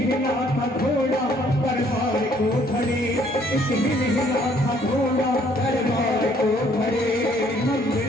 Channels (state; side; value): normal; both; correlation 0.63